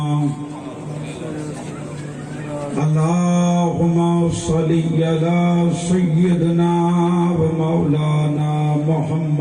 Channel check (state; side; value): identical; both; correlation 1.00